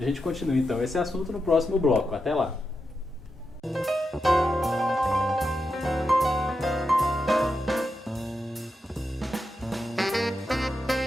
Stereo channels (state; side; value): normal; both; correlation 0.87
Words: gente continua então esse assunto no próximo bloco. Até lá!